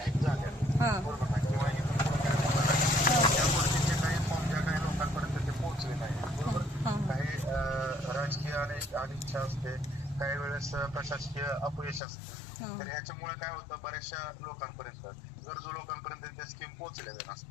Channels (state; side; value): drops out; right; at 12.0 s